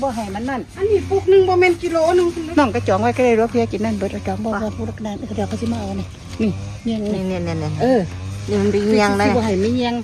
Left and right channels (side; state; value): both; identical; correlation 1.00